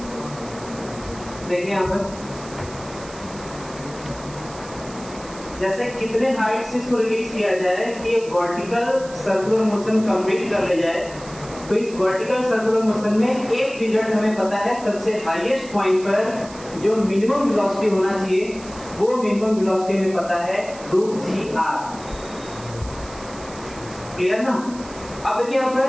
देखिए यहाँ पर जैसे कितने हाइट से इसको रिलीज किया जाए कि वर्टिकल सर्कुलर मोशन कंप्लीट कर ले जाए, तो इस वर्टिकल सर्कुलर मोशन में एक रिजल्ट हमें पता है, सबसे हाईएस्ट पॉइंट पर जो मिनिमम वेलोसिटी होना चाहिए वो मिनिमम वेलोसिटी हमें पता है √gr। क्लियर ना? अब देखिए यहाँ पर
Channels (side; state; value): right; noise; hiss, 18 dB below the sound